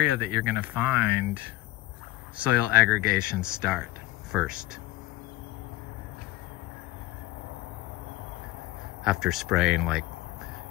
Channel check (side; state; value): right; quieter; 17.7 dB